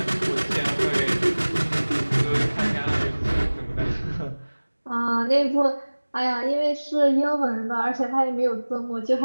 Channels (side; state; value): both; inverted; correlation -1.00